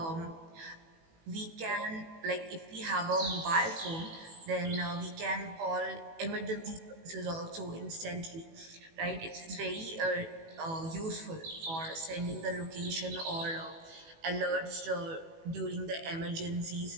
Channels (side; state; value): left; late; 18 ms